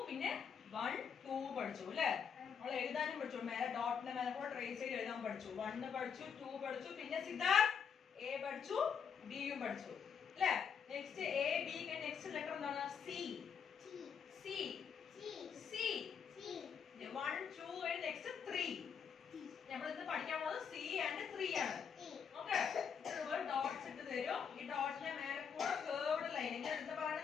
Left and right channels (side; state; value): right; quieter; 7.0 dB